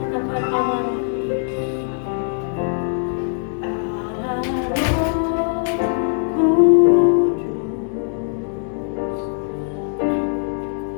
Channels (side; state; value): right; silent; digital silence